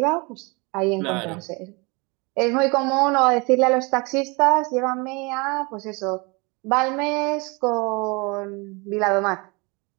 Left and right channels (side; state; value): left; quieter; 28.4 dB